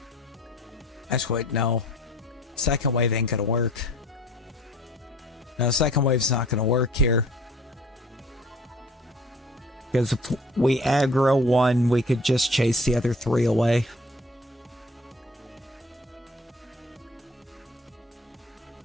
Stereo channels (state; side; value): normal; both; correlation 0.50